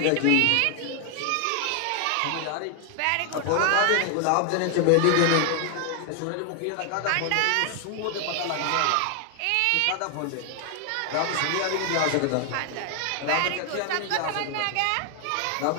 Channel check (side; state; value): both; different; correlation 0.00